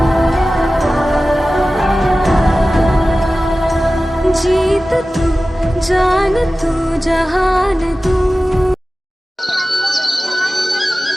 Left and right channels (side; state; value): both; normal; correlation 0.96